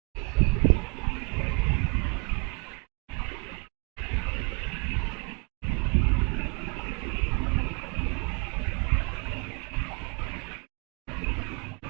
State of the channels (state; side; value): quieter; left; 33.8 dB